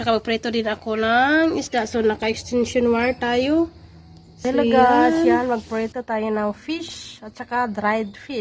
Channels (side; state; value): both; identical; correlation 1.00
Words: magprito din ako ng isda, so naka-extension wire tayo. Hello guys, yan, magprito tayo ng fish at saka dried